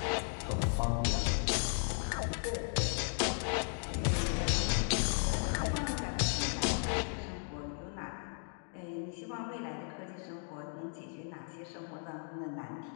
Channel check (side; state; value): right; silent; 54 dB below the other